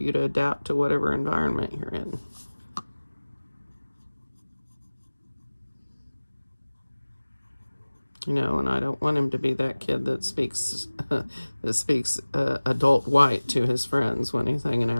to adapt to whatever environment you're in. You know, and I don't want him to be that kid that speaks adult white to his friends when he's hanging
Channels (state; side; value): inverted; both; correlation -1.00